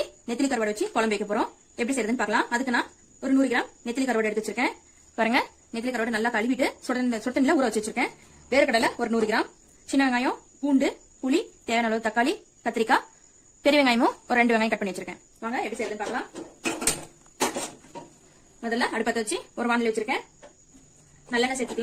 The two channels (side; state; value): both; identical; correlation 1.00